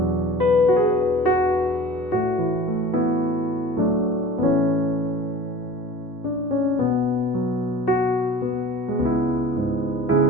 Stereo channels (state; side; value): normal; both; correlation 0.41